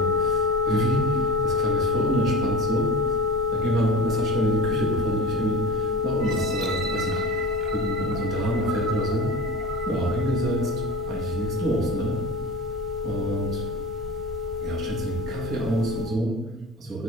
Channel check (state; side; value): normal; both; correlation 0.33